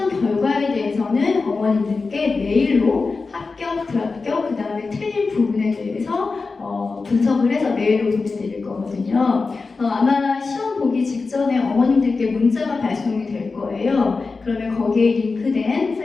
결과에 대해서는 어머님들께 메일로 합격, 불합격, 그 다음에 틀린 부분에 대해서 분석을 해서 메일로 보내드릴 거거든요. 아마 시험 보기 직전에 어머님들께 문자가 발송이 될 거예요. 그러면 거기에 링크된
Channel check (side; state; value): right; quieter; 4.2 dB